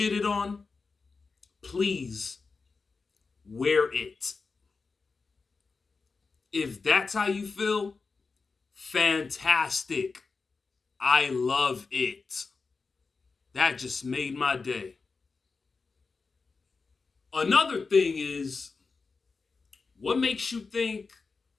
on, please wear it. If that's how you feel, fantastic. I love it. That just made my day. Another thing is, what makes you think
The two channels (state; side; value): quieter; right; 4.4 dB